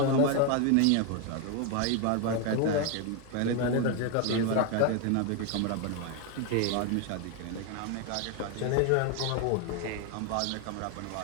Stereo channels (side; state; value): both; different; correlation 0.01